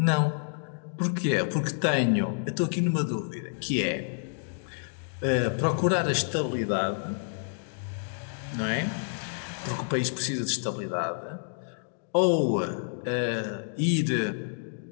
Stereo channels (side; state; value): right; silent; digital silence